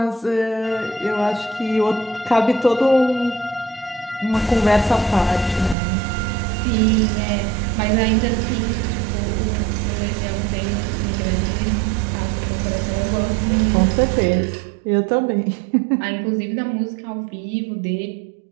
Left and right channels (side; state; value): left; drops out; at 5.8 s